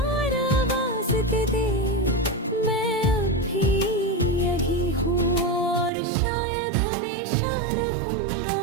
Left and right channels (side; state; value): left; drops out; at 5.9 s